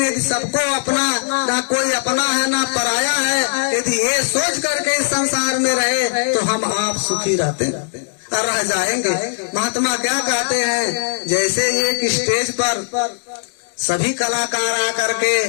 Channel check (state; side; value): silent; right; digital silence